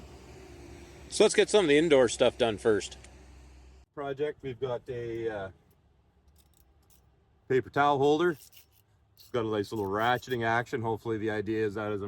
So let's get some of the indoor stuff done first. Project, we've got a paper towel holder. It's got a nice little ratcheting action. Hopefully the idea is that as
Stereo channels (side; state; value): both; identical; correlation 1.00